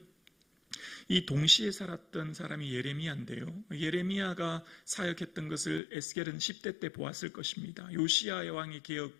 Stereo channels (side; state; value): right; drops out; at 5.8 s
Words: 이 동시에 살았던 사람이 예레미야인데요. 예레미야가 사역했던 것을 에스겔은 10대 때 보았을 것입니다. 요시야 왕의 개혁,